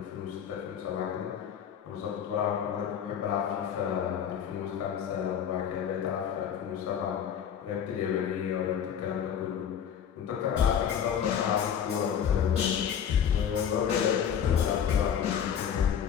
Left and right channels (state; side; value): quieter; right; 8.5 dB